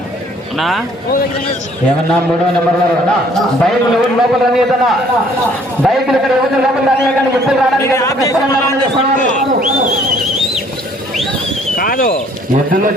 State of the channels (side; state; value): both; normal; correlation 0.60